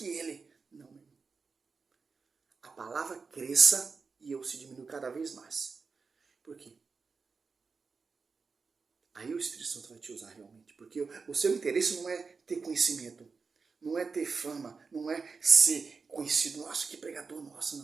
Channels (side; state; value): left; quieter; 4.8 dB